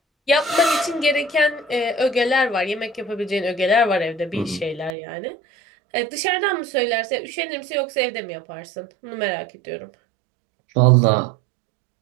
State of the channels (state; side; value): drops out; left; at 5.0 s